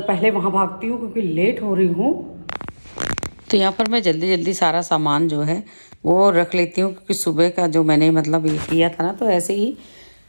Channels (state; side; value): inverted; both; correlation -1.00